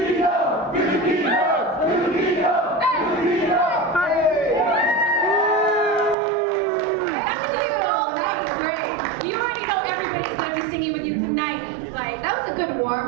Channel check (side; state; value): left; drops out; at 6.2 s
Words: You already know everybody's gonna be singing with you tonight. Like, That was a good